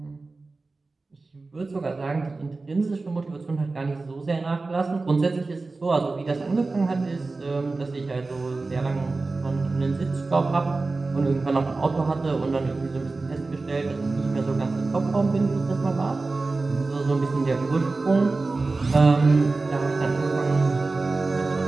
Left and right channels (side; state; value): left; quieter; 3.6 dB